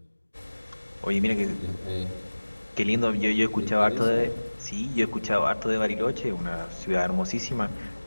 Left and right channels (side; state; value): both; inverted; correlation -1.00